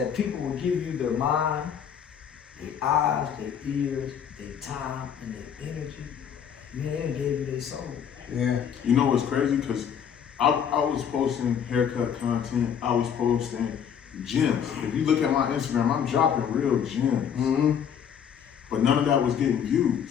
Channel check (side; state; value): right; quieter; 8.1 dB